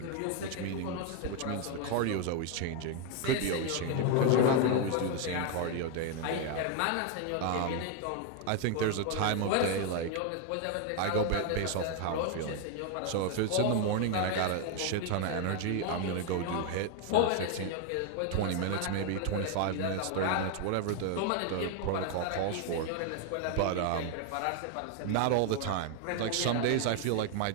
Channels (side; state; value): both; different; correlation 0.01